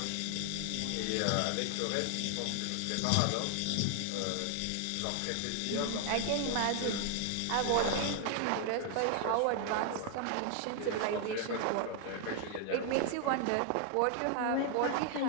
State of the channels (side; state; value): both; different; correlation 0.00